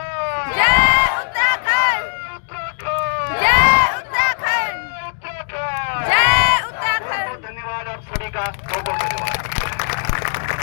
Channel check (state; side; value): silent; right; digital silence